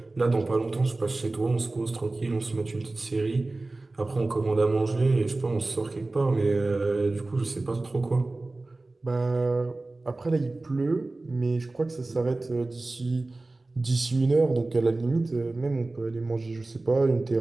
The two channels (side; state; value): left; quieter; 3.1 dB